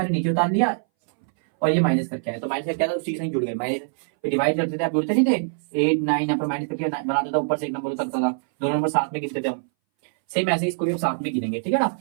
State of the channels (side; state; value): left; silent; 61 dB below the other